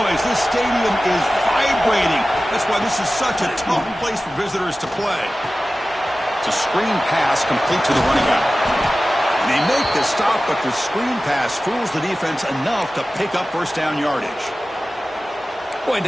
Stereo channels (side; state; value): both; normal; correlation 0.96